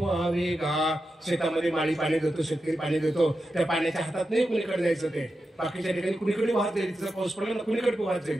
गा. शेतामध्ये माळी पाणी देतो, शेतकरी पाणी देतो, त्या पाण्याच्या हातात नाही कुणीकडे जायचं, ते बाकीच्या ठिकाणी कुणीकडे वाहत जाईल, तिचा पाऊस पडला ना कुणीकडे वाहत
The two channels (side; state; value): both; normal; correlation 0.90